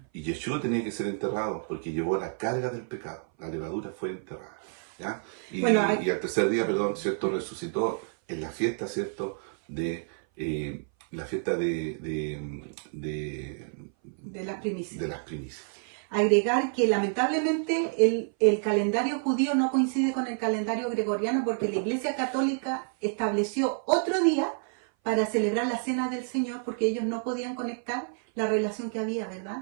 y Yeshua tenía que ser enterrado porque llevó la carga del pecado. La levadura fue enterrada, ¿ya? Y al tercer día, ¿cierto?, resucitó en la fiesta, ¿cierto?, de la fiesta de las primicias. De las primicias. Agregar que lamentablemente el calendario judío no coincide con el calendario gregoriano, porque la Iglesia Católica estableció otro día para celebrar la Cena del Señor, porque ellos no podían conectar la relación que había,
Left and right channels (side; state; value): left; silent; 57 dB below the other